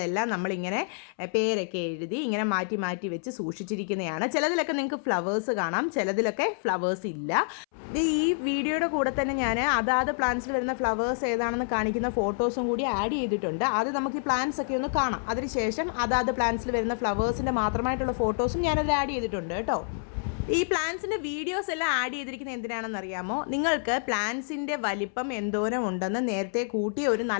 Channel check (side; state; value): right; silent; 59 dB below the other